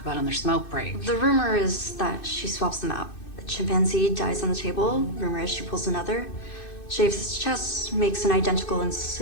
on their smoke break? The rumor is that she swaps them out. The chimpanzee dies on the table. Rumor is she pulls another. Shaves its chest, makes an identical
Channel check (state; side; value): late; right; 2.6 ms